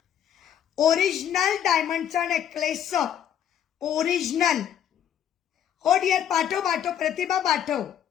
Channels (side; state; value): right; quieter; 9.8 dB